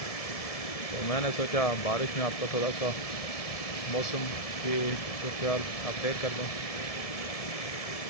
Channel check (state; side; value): late; right; 1.7 ms